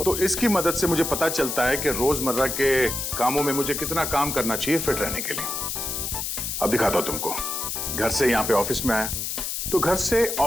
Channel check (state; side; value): noise; left; hiss, 3 dB below the sound